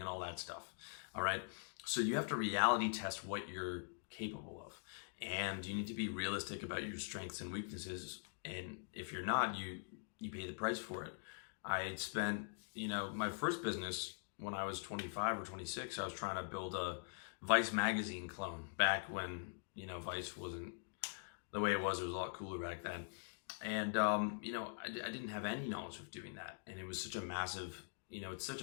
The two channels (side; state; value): right; silent; digital silence